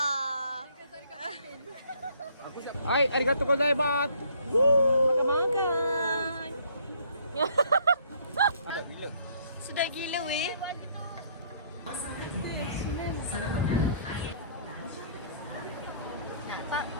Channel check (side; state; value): both; inverted; correlation -0.62